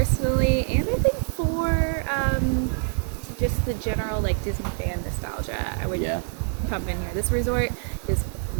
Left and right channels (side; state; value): left; silent; 62 dB below the other